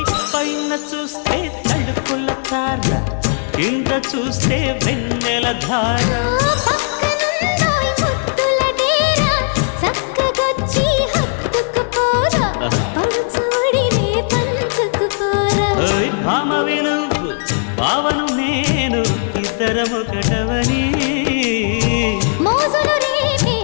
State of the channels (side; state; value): right; silent; digital silence